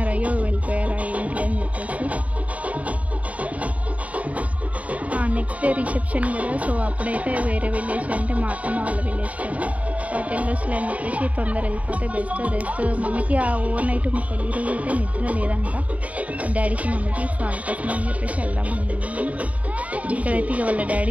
అయ్యో వెళ్ళిపోయారా ఏంటి అని చెప్పేసి. నెక్స్ట్ డే రిసెప్షన్ కదా, సో అప్పుడైతే వేరే విలేజ్ అంటే మా అత్తమ్మ వాళ్ళ విలేజ్ కదా, సో టెల్లర్స్లో అని చెప్పేసి తొందర వెళ్ళిపోతే బెస్ట్. రెస్ట్ మమ్మీకి ఆ ఓవర్ నైట్ మా పెళ్లి రోజు అయితే నిద్ర లేదంట డాడీకి మమ్మీకి. సో అందుకోసం అని చెప్పేసి వెళ్దామని ఇక్కడైతే ఇక వాళ్ళ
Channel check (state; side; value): late; left; 0.069 ms